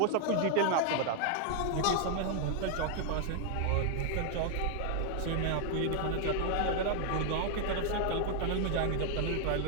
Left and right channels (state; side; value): different; both; correlation 0.00